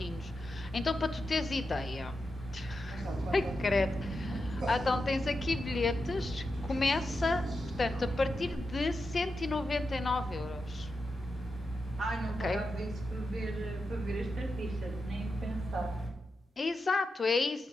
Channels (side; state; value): both; normal; correlation 0.88